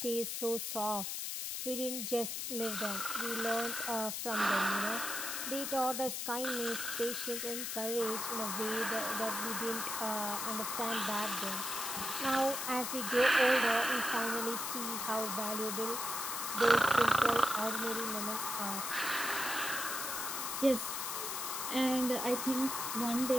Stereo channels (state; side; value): noise; left; hiss, 3 dB below the sound